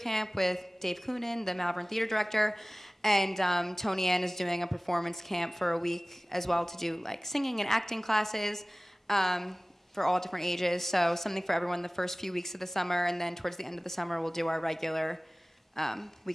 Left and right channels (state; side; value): normal; both; correlation 0.98